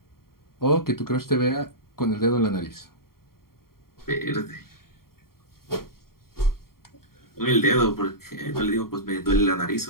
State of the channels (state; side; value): late; right; 0.93 ms